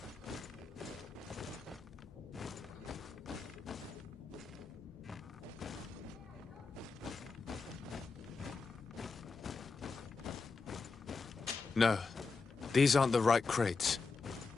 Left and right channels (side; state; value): right; quieter; 4.5 dB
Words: No, these aren't the right crates.